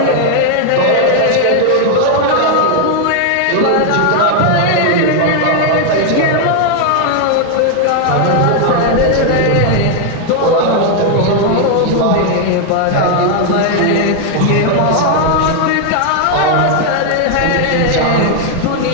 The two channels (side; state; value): both; different; correlation 0.00